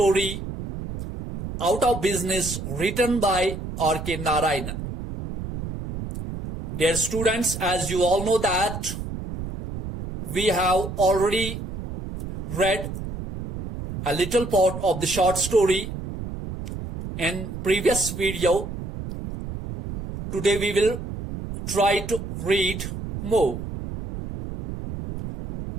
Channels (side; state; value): right; noise; rumble, 8 dB below the sound